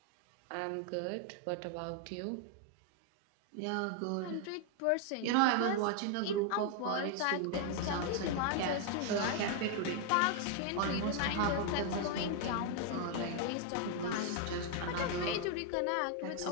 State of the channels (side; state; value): both; different; correlation 0.00